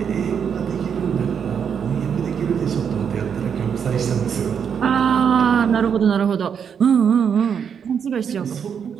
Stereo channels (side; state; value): left; quieter; 7.4 dB